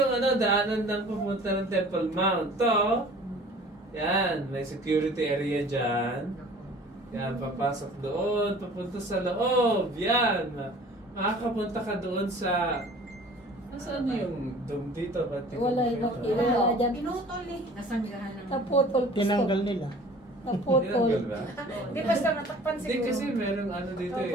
daanan ng pupunta ng Temple Mount. To, yan, may security area dyan. Yan, papasok doon, papunta sa loob. Yan, makakapunta ka doon sa, Nasaan yung dome dito? Ba't di ko Wala makita? wala dyan. Pinutol eh. Nasanggahan ng... Naputol. Tinanggal nila. Tinanggal Naputol. ba? Di basta natakpan Hindi siguro. kasi merong ano dito eh.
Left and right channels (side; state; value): both; normal; correlation 0.47